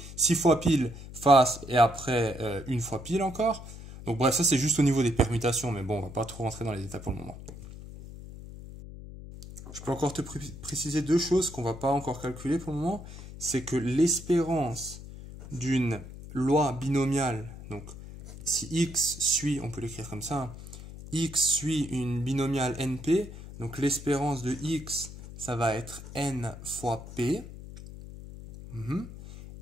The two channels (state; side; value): noise; left; hum, 13 dB below the sound